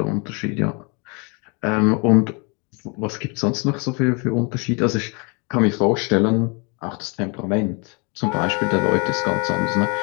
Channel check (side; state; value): right; quieter; 32.2 dB